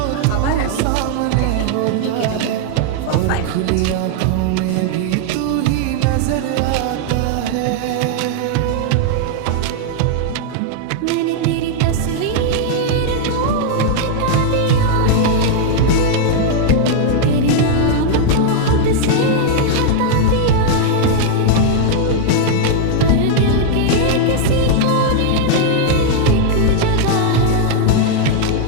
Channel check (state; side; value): different; both; correlation 0.00